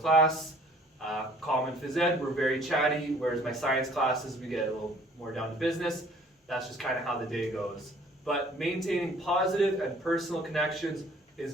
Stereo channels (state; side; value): normal; both; correlation 0.55